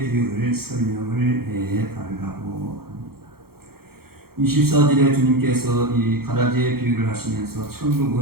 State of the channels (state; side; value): late; left; 0.94 ms